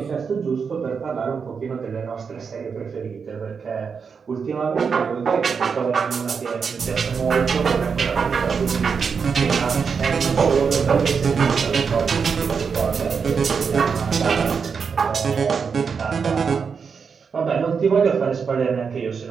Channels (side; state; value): left; quieter; 5.9 dB